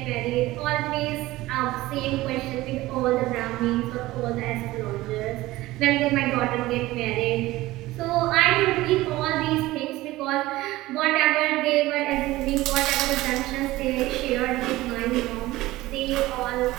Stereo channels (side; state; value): left; quieter; 17.8 dB